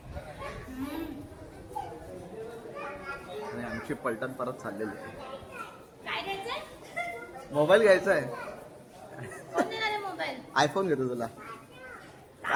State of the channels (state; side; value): identical; both; correlation 1.00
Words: आणि आमची पलटण परत चाललेली आहे. काय घ्यायचंय? मोबाईल घ्यायचा आहे. कोण देणार आहे मोबाईल? आयफोन घेतो तुला.